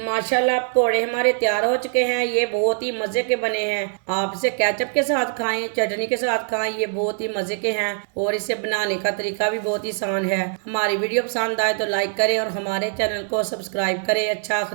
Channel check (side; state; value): left; silent; digital silence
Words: पकोड़े हमारे तैयार हो चुके हैं। ये बहुत ही मज़े के बने हैं। आप इसे केचप के साथ खाएं, चटनी के साथ खाएं, ये बहुत ही मज़े के हैं और इसे बनाने का तरीका भी बहुत ही आसान है। हमारी वीडियो पसंद आए तो लाइक करें और हमारे चैनल को सब्सक्राइब करें। अच्छा,